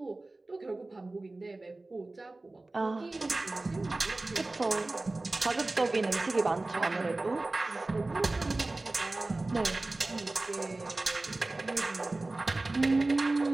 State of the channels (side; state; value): left; quieter; 3.0 dB